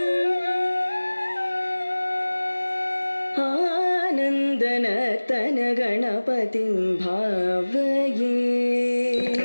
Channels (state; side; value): inverted; both; correlation -1.00